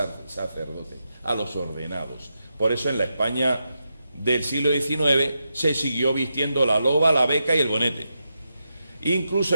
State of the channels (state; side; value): inverted; both; correlation -0.86